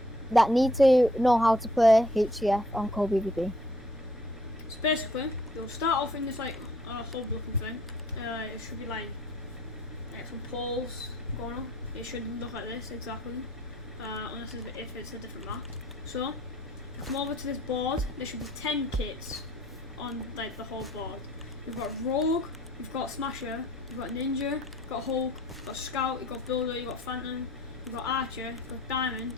that need to know how to play HCF on Cold.Pvp. So basically, you'll start off in this like hub looking thing. It should be like some poles going on. It should look like this exactly, unless if it's a different map. So, come over to this board. There should be 10 kits on like the whole board. You've got Rogue, you've got Smasher, you've got Ninja, you've got Hulk, you've got Scout, you've got Builder, you've got Phantom, you've got Archer, you've got Diamond,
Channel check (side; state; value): both; normal; correlation 0.61